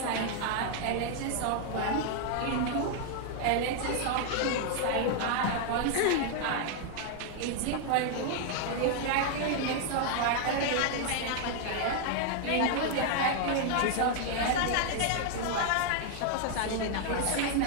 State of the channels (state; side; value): different; both; correlation 0.00